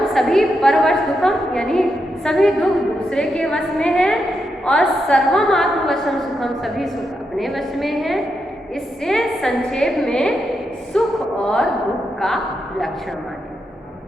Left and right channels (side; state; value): both; normal; correlation 0.84